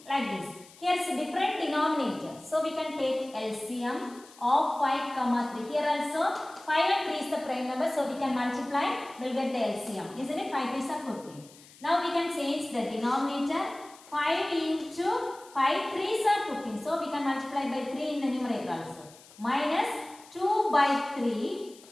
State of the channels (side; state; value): left; noise; hiss, 23 dB below the sound